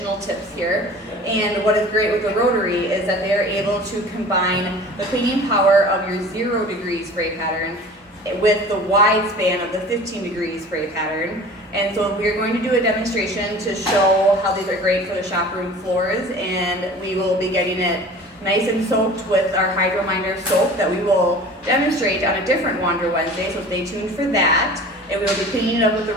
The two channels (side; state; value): both; normal; correlation 0.42